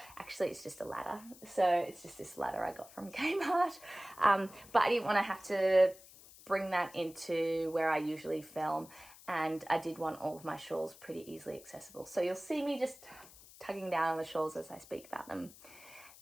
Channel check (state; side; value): noise; left; hiss, 20 dB below the sound